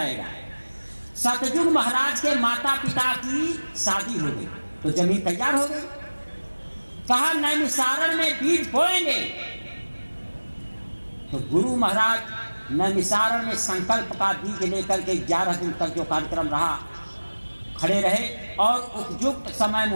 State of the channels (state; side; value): inverted; both; correlation -1.00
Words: सतयुग महाराज के माता पिता की शादी हो गई तो जमीन तैयार हो गई। कहा नैमिषारण्य में बीज बोएंगे। तो गुरु महाराज नैमिषारण्य में संकल्प का बीज लेकर के 11 दिन तक जो कार्यक्रम रहा खड़े रहे और उपयुक्त समय